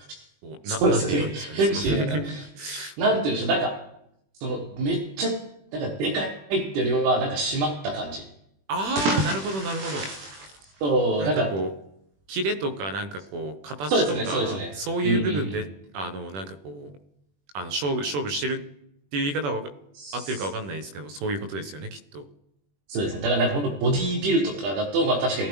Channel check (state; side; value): late; left; 21 ms